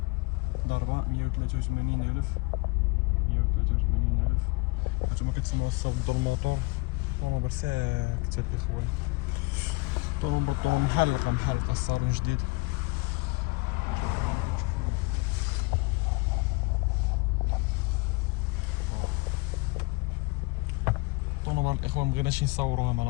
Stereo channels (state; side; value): quieter; right; 24.3 dB